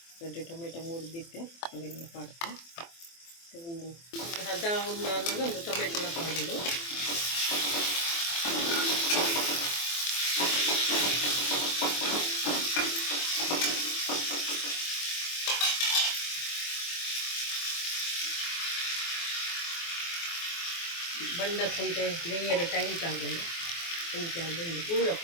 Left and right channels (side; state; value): right; late; 24 ms